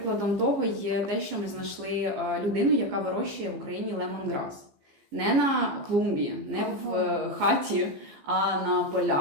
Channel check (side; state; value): left; late; 15 ms